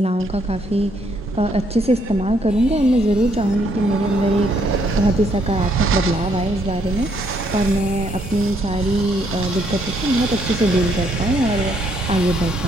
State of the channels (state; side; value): normal; both; correlation 0.70